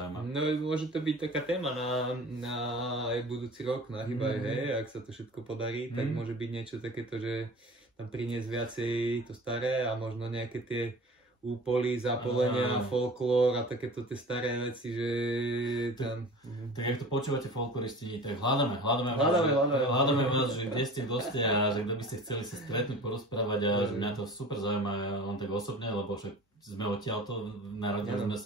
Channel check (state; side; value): normal; both; correlation 0.40